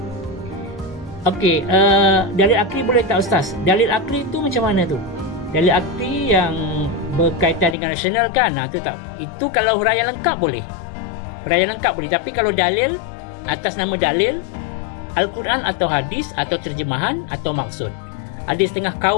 Okey, dalil akli boleh tak Ustaz? Dalil akli tu macam mana tu? Dalil akli yang berkaitan dengan rasional kan? Itu kalau huraian lengkap boleh. Huraian lengkap boleh, tapi kalau dalil atas nama dalil, Al-Quran atau hadis atau terjemahan atau maksud. Ada setengah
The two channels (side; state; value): right; drops out; at 7.8 s